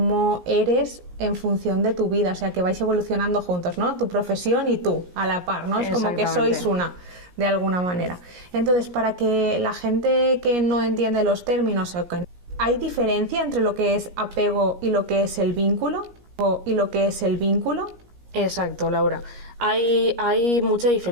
eres en función de tu vida, o sea que vais evolucionando juntos, ¿no? Tu profesión y tú, a la par, ¿no? Es como que sois una, de alguna manera. Entonces, para que la gente que no entiende los términos, ¿hay diferencia entre lo que es apego y lo que es el vínculo? Exacto, Laura. Hay mucha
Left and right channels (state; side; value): late; left; 17 ms